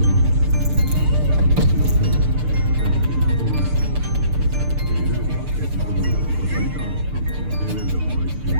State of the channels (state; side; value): late; left; 6.7 ms